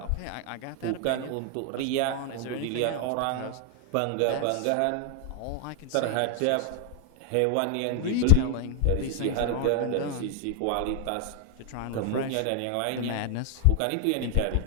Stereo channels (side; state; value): both; different; correlation 0.00